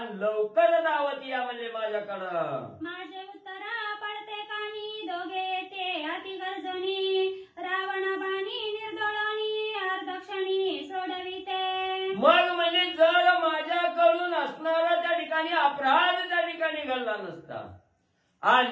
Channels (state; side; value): identical; both; correlation 1.00